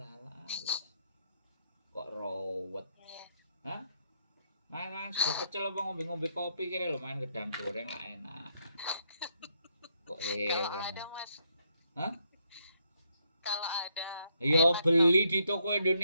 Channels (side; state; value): both; inverted; correlation -0.75